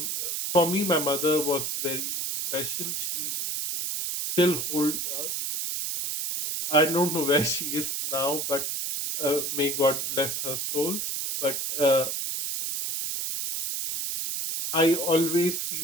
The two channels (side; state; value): right; noise; hiss, 2 dB below the sound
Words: For me, my mother was very special. She still hold. I don't know where she is now, but may God bless her soul. But I always